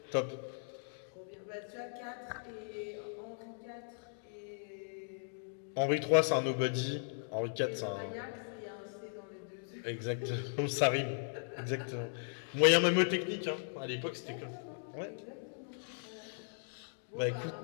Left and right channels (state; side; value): silent; right; digital silence